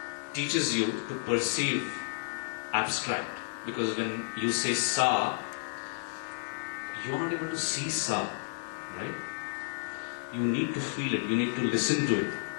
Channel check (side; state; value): right; silent; digital silence